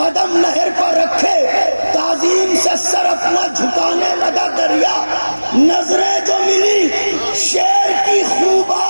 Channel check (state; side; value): inverted; both; correlation -1.00